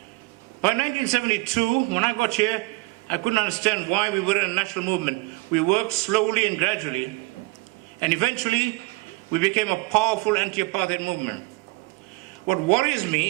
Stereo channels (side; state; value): left; quieter; 24.2 dB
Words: By 1972, when I got here, I couldn't understand why we were in a national movement. We worked slowly and gradually, and eventually we became a powerful anti-apartheid movement. What worries